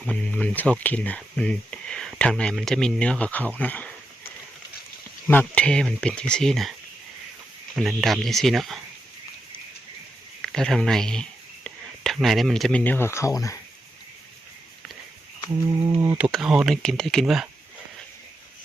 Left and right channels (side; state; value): both; normal; correlation 0.86